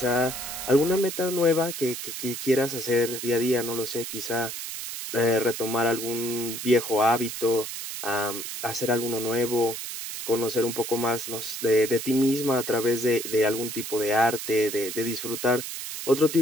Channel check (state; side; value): noise; right; hiss, 7 dB below the sound